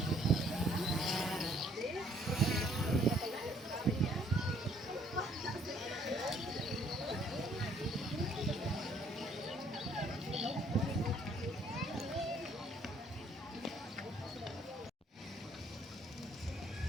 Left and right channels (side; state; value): both; normal; correlation 0.63